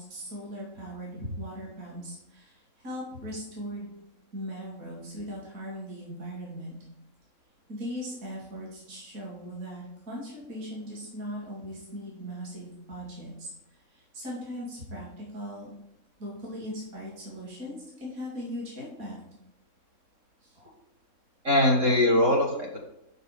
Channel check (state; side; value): late; left; 3.6 ms